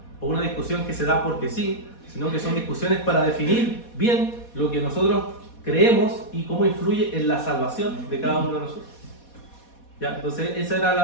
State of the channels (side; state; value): right; late; 4.2 ms